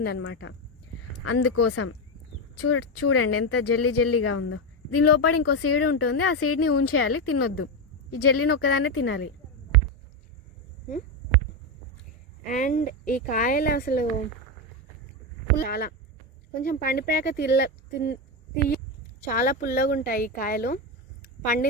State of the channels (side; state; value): both; normal; correlation 0.11